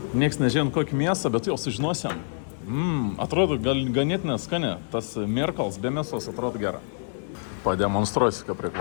Niekas nežino kokį mėsą, bet jau sužinosim. Atrodo ganėtinai skani. Tas mirkals be mėsos atrodo gera. Pademonstruosiu, kaip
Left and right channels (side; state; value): right; silent; digital silence